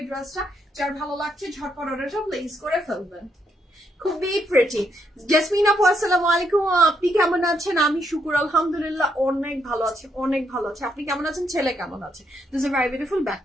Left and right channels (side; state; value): both; normal; correlation 0.76